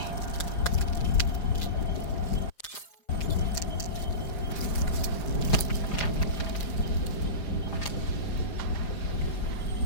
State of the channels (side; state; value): right; late; 4.9 ms